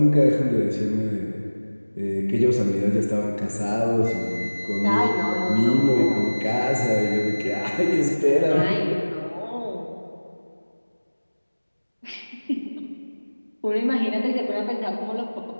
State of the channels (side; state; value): both; inverted; correlation -1.00